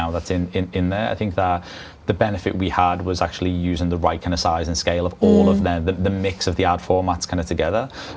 that's in there. I think that the benefit we had was actually using the right kind of size and scale of all of the mix of the ad formats kind of together.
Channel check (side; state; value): both; identical; correlation 1.00